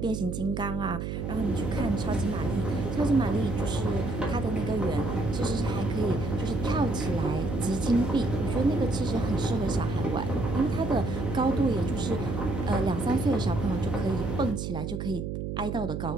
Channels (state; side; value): noise; right; hum, 4 dB below the sound